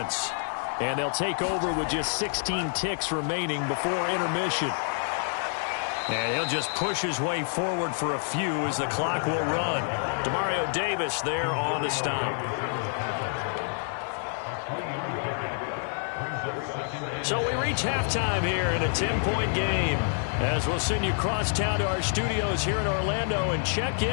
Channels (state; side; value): silent; right; 59 dB below the other